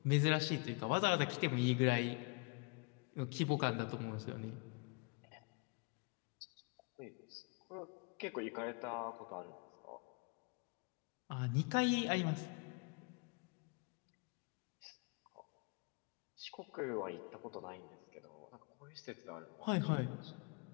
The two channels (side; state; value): right; quieter; 33.3 dB